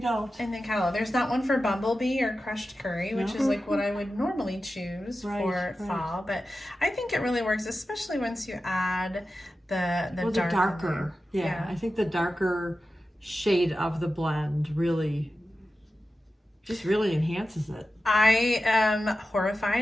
In the catalog. There's not one for Bumblebee or Crushed Curry, which is like what I would normally choose for fall. But I think it really works, especially once you add the darker. Yeah, I think the darker shade of the blend really enhances it. I am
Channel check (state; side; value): normal; both; correlation 0.93